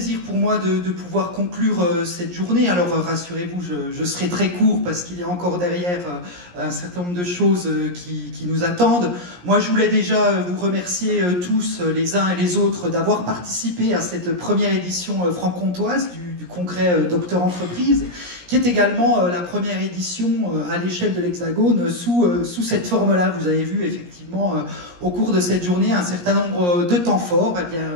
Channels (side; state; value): left; late; 17 ms